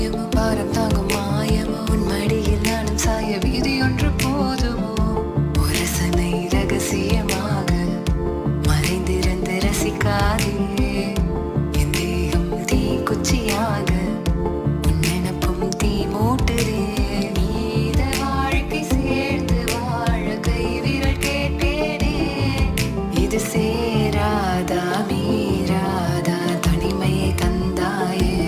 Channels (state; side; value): identical; both; correlation 1.00